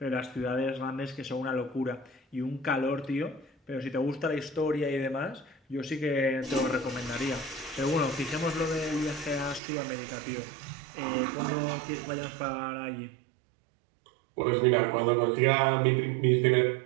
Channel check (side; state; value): left; drops out; at 9.6 s